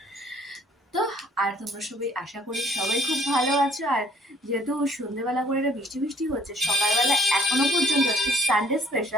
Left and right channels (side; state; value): both; normal; correlation 0.62